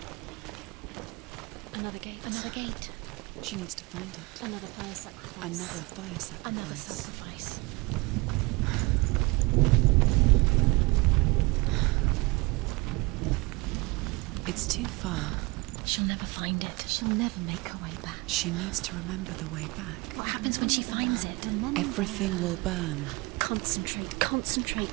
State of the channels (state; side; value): quieter; left; 25.0 dB